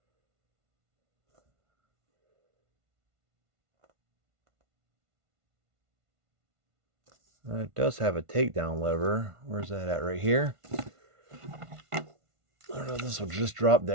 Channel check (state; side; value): late; left; 1.5 ms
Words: It does have a takedown lever. Where's that at? Right here. I don't know if this will just drop